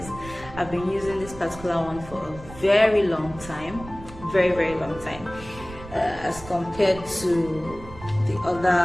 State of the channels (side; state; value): right; noise; rumble, 16 dB below the sound